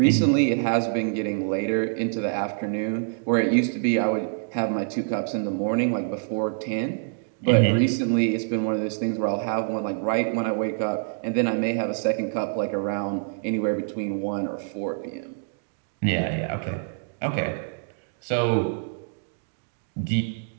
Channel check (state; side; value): silent; left; digital silence